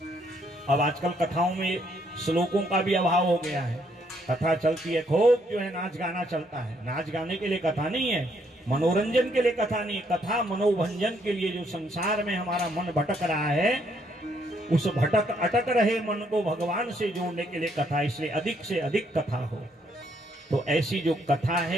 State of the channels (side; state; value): both; normal; correlation 0.71